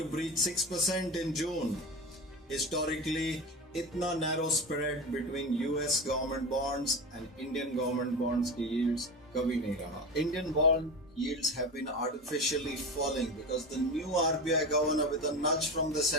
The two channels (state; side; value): normal; both; correlation 0.25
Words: breach 6% in June. Historically, इतना narrow spread between US government bonds and Indian government bonds की yields कभी नहीं रहा. Indian bond yields have been artificially falling because the new RBI governor, with a nudge from the